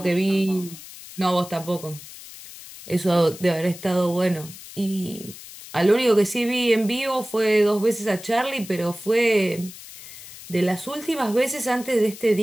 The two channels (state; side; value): noise; left; hiss, 15 dB below the sound